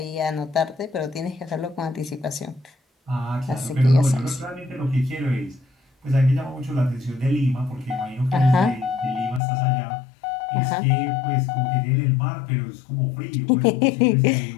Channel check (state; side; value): drops out; right; at 9.4 s